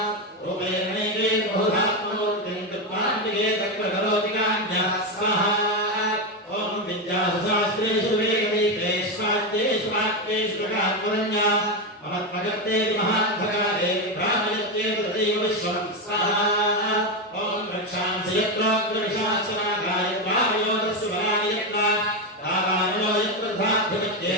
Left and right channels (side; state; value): both; normal; correlation 0.10